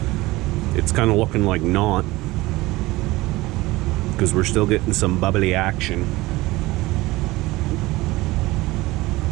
It's kind of looking like not, because we're still getting some bubbly action.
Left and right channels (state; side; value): quieter; left; 19.9 dB